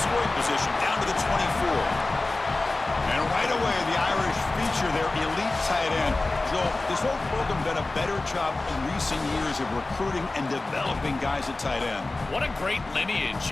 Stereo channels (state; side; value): quieter; right; 3.1 dB